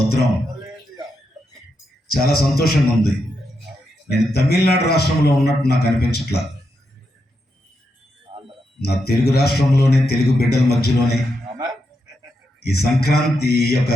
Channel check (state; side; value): normal; both; correlation 0.84